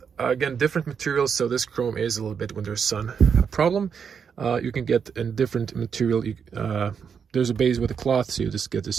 again different materials. So this chrome is a little bit when there's sun a problem. You can get a different material. There's a base with a cloth, so you just get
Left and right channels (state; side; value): quieter; left; 6.8 dB